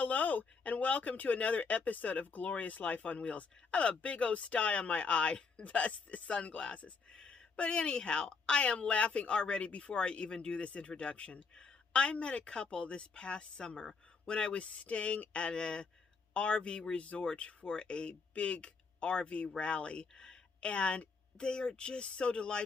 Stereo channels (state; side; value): quieter; right; 4.8 dB